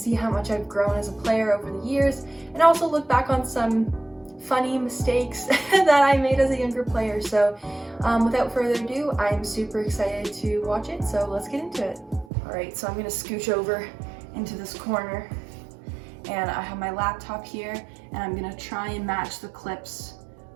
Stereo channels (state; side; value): drops out; left; at 12.2 s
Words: how much I've grown as a player over the years, and also look back on some funny mistakes that I made as a younger player. So without further ado, I'm super excited to watch it, so let's get into it. Alright, so I'm gonna scooch over into this corner and I have my laptop here and I'm gonna try and match the clips